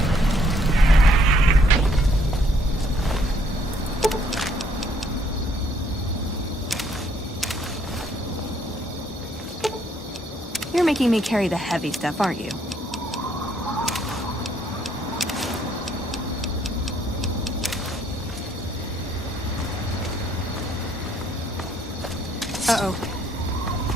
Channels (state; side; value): normal; both; correlation 0.67